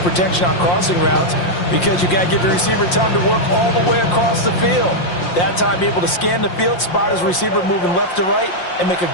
on crossing routes, because you've got to give your receiver time to work all the way across the field. That time, be able to scan the field, spot his receiver moving left to right, and make a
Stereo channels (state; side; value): late; right; 5.7 ms